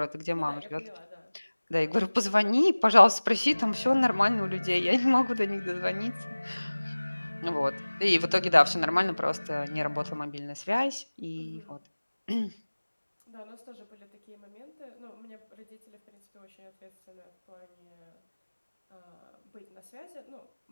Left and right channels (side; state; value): both; inverted; correlation -1.00